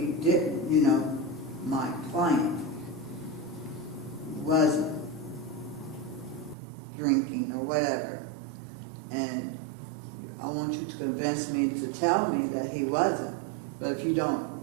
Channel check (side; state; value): left; drops out; at 6.6 s